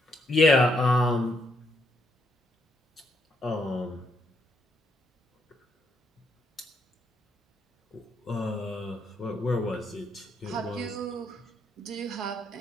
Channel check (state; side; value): normal; both; correlation 0.75